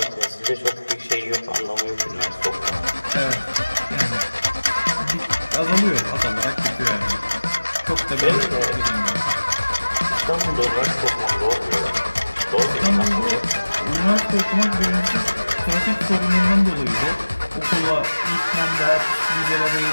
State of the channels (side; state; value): both; inverted; correlation -1.00